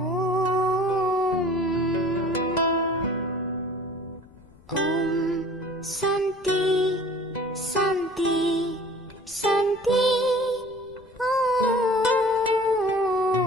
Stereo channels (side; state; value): left; noise; rumble, 25 dB below the sound